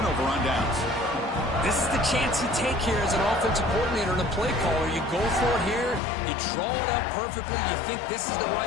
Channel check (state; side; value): drops out; right; at 6.0 s